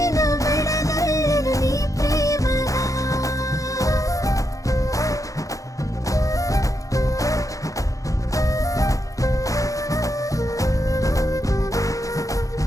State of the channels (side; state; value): right; late; 0.16 ms